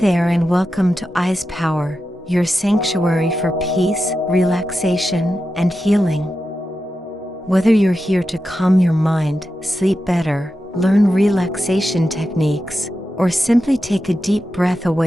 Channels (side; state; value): both; normal; correlation 0.90